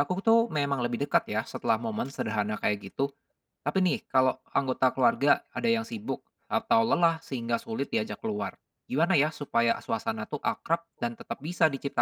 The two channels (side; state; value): both; identical; correlation 1.00